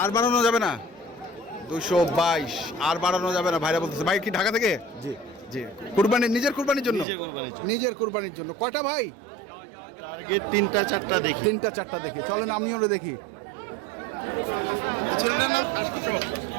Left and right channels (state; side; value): drops out; left; at 7.1 s